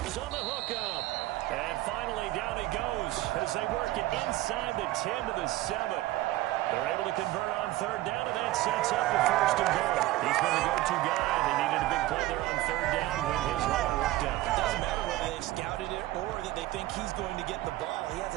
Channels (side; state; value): left; quieter; 16.9 dB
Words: on the hookup. And finally, down he goes as they work it inside the 10 to the 7. They're able to convert on 3rd down, and that sets up the 1st and goal. He's been the go-to guy. They needed a big play there on 3rd down when his run worked out. It doesn't matter whether they've scouted it or that they think he's going to get the ball. He has